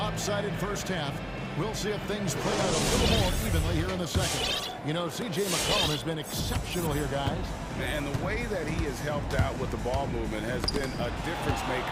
first half. We'll see if things play out a little more evenly here in the second. You know, C.J. McCollum has been exceptional here, guys. And the way that he has helped out with the ball movement has been a difference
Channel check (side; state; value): both; identical; correlation 1.00